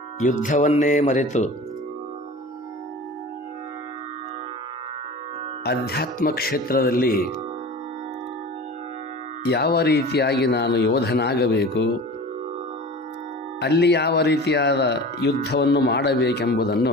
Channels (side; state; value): both; normal; correlation 0.37